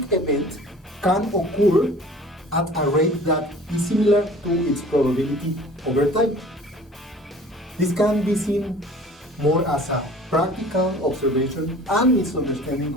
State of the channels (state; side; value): normal; both; correlation 0.46